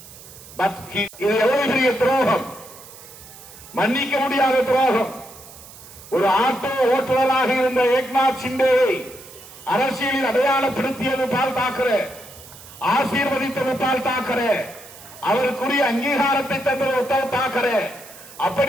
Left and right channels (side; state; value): right; noise; hiss, 18 dB below the sound